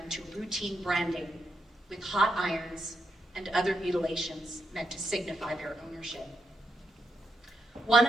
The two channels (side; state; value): both; normal; correlation 0.83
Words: to routine branding with hot irons and other mutilations meant to signify their ownership. One